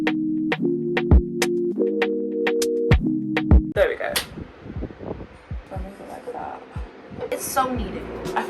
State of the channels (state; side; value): identical; both; correlation 1.00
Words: There we go. Don't make it like that. It's so needed. I